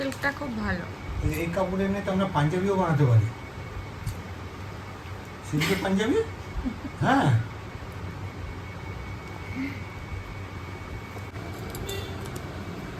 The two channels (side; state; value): both; identical; correlation 1.00